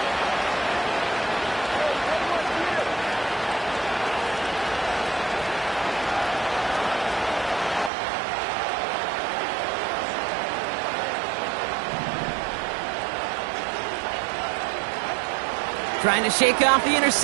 Trying to shake off the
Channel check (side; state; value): left; drops out; at 7.9 s